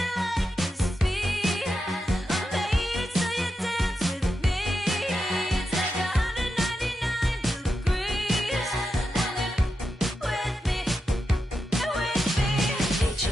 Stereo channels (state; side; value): normal; both; correlation 0.88